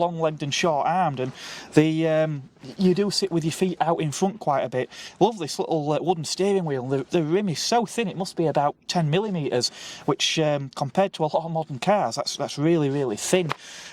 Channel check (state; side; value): identical; both; correlation 1.00